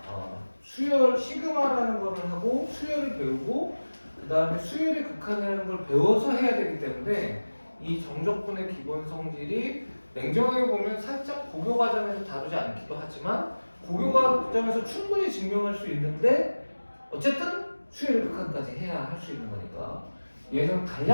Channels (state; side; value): inverted; both; correlation -1.00